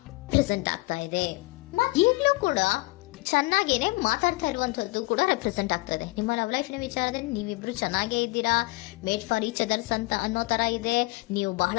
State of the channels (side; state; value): right; quieter; 23.0 dB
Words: ಪ್ರೆಸೆಂಟ್ ಆಗ್ತಾ ಇದೆ. ಈಗಲೂ ಕೂಡ ಚೆನ್ನಾಗೇನೆ ಮಾತಾಡ್ತಾ ಇರುವಂತದ್ದು ಕೂಡ ರೆಪ್ರೆಸೆಂಟ್ ಆಗ್ತಾ ಇದೆ. ನಿಮ್ಮ ಲವ್ ಲೈಫಿನ ವಿಚಾರದಲ್ಲಿ ನೀವಿಬ್ರು ಚೆನ್ನಾಗೇ ಇದ್ದೀರಾ, ಮೇಡ್ ಫಾರ್ ಈಚ್ ಅದರ್ಸ್ ಅಂತ ಅನ್ನೋ ತರ ಇದೆ. ನೀವು